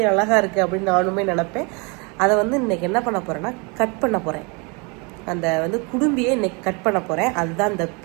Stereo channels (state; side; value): quieter; left; 31.0 dB